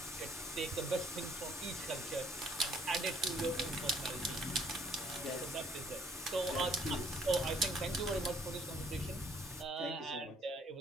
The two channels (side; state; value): both; normal; correlation 0.63